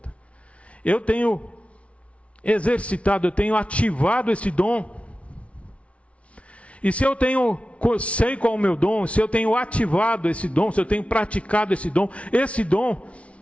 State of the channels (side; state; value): right; late; 0.063 ms